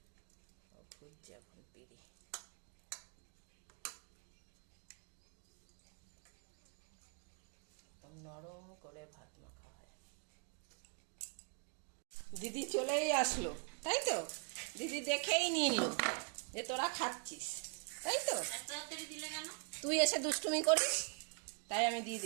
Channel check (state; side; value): quieter; left; 39.0 dB